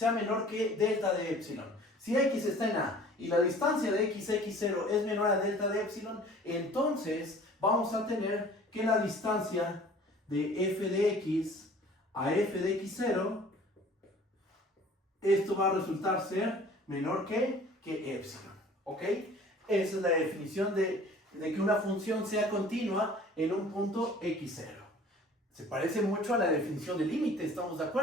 menor que delta de epsilon. Si x está en A y la distancia de x0 es menor a delta de epsilon, entonces vamos a tener que la distancia de f de x a f de x0, esto va a resultar ser menor que epsilon. ¿Ok? Esa es la definición de que una función sea continua en un punto x0. Se parece mucho a la definición de límite, ¿estamos de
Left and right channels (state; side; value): normal; both; correlation 0.48